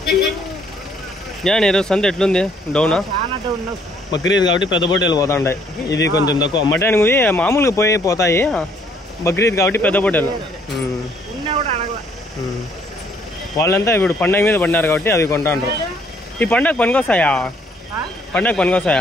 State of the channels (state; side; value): normal; both; correlation 0.65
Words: ఈరోజు సంత ఎట్లుంది డౌనా బక్రీద్ కాబట్టి పెద్ద పొట్టేలు పోతాయి ఇది కొంచెం తక్కువ మటన్ మామూలుగా పోతాయి బక్రీద్ కాబట్టి పెద్ద పొట్టేలు వాళ్ళంతా ఇప్పుడు పండగ మీద పడినారు కాబట్టి అవి కొంటాండ్రు ఈ పండగ పనికొస్తాయా